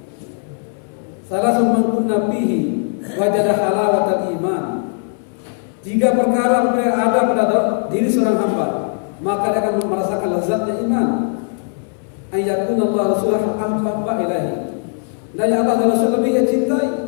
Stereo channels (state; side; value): silent; right; 67 dB below the other